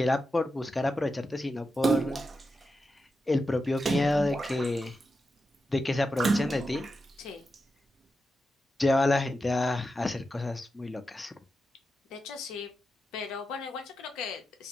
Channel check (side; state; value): both; normal; correlation 0.89